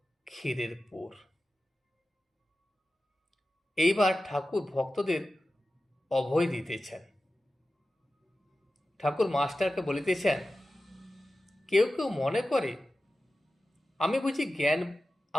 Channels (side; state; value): both; normal; correlation 0.94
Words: ক্ষীরের পোর। এইবার ঠাকুর ভক্তদের অভয় দিতেছেন। ঠাকুর মাস্টারকে বলিতেছেন, কেউ কেউ মনে করে